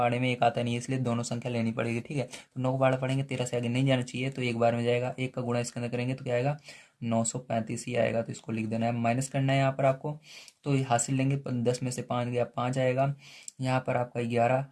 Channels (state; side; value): identical; both; correlation 1.00